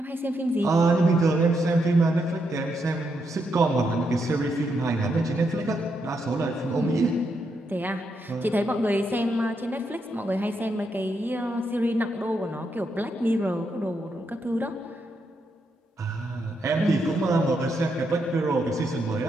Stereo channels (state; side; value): normal; both; correlation 0.80